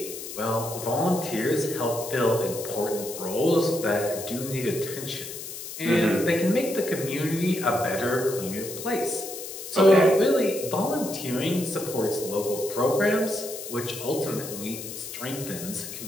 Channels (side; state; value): left; noise; hiss, 10 dB below the sound